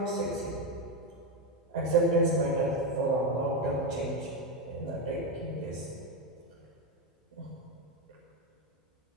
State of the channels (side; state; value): both; normal; correlation 0.10